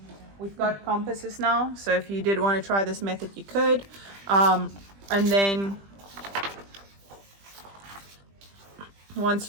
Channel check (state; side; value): late; left; 20 ms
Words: We've got compasses now, so if you did want to try this method, you could. And then